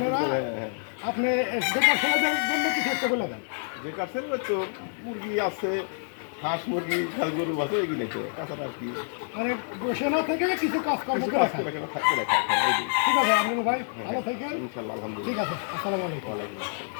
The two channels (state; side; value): silent; right; digital silence